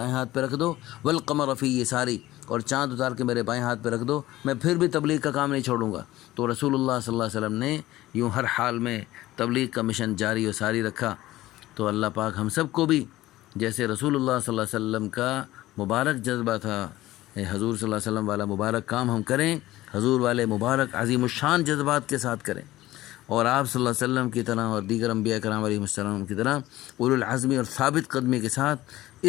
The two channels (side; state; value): right; quieter; 16.4 dB